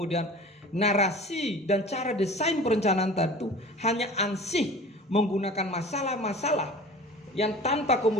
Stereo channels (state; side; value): normal; both; correlation 0.40